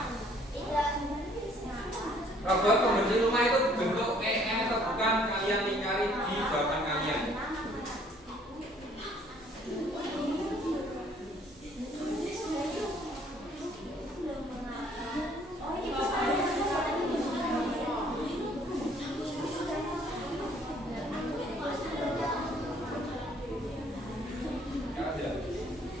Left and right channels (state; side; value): normal; both; correlation 0.60